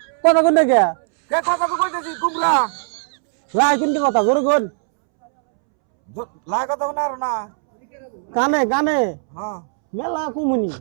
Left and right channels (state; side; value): silent; left; 66 dB below the other